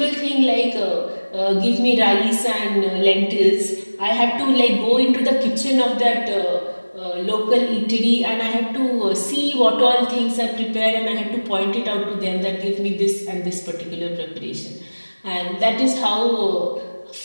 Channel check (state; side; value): inverted; both; correlation -1.00